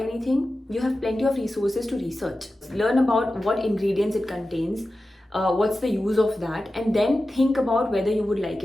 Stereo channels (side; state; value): both; normal; correlation 0.94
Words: you have plenty of resources to research. Learn about what ingredients it contains, what's the use of that, and then think about whether you would like